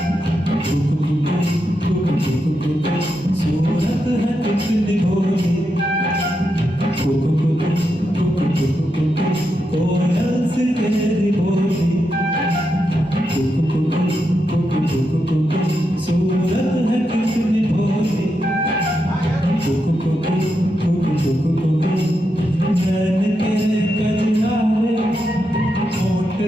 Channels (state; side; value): normal; both; correlation 0.85